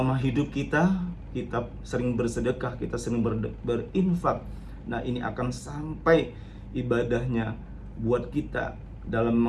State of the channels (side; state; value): both; identical; correlation 1.00